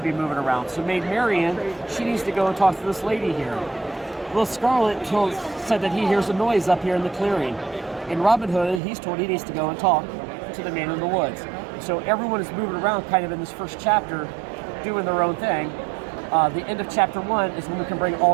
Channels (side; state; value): left; drops out; at 8.8 s